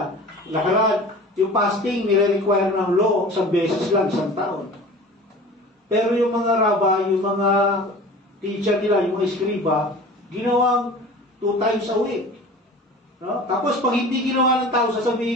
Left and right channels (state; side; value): normal; both; correlation 0.40